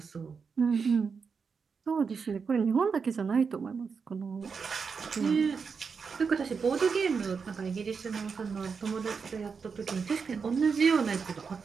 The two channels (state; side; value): quieter; left; 5.6 dB